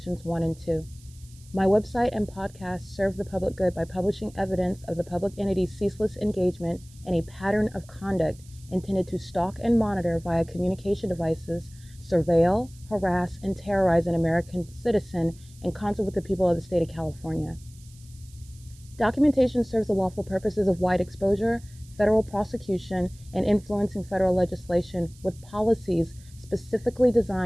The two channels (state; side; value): noise; right; hiss, 25 dB below the sound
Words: 1 and 2. My website and podcast serve the public good by publishing evidence of the public entity's ceaseless engagement in a pattern of conduct intended to stalk and monitor via communication devices, surveil, harass, and terrorize an American citizen in concert with the people of the state of California. Documentation serves the lawful purposes of wide exposure, federal prosecution, and influencing federal legislation with policies specifically